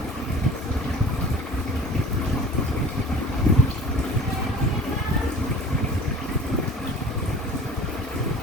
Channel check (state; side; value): normal; both; correlation 0.43